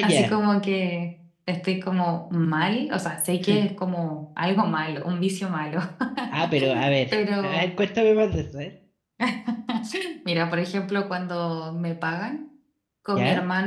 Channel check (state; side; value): identical; both; correlation 1.00